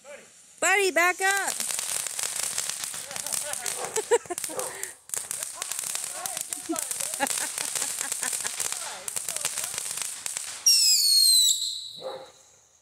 Buddy, back up!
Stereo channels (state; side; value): identical; both; correlation 1.00